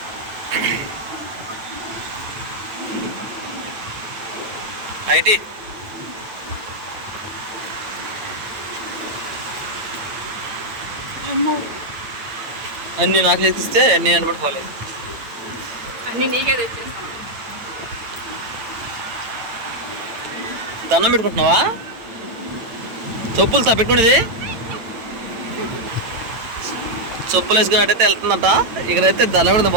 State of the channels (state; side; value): late; left; 9.0 ms